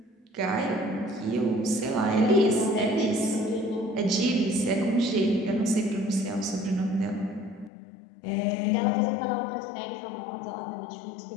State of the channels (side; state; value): right; drops out; at 7.7 s